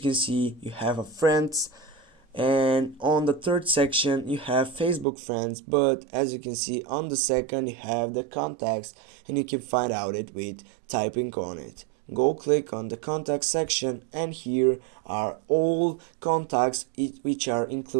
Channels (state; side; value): drops out; left; at 5.1 s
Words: can see you have a friends, and on the third section you have Facebook friends, but as you can see on the second you have the contacts, and you can find out it with typing on it. Go click on the contact section, and here are all contacts which are